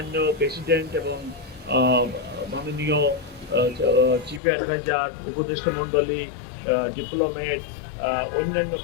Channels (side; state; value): right; drops out; at 4.4 s